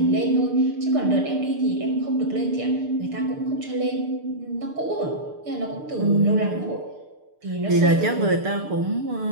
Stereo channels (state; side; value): late; left; 6.7 ms